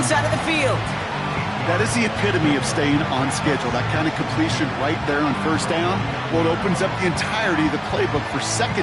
side of the field. That is the epitome of staying on schedule. That kind of completion right there on 1st down. Well, it opens up the entirety of the playbook for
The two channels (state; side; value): identical; both; correlation 1.00